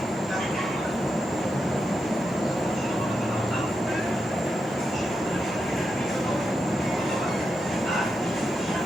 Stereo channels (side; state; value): both; normal; correlation 0.86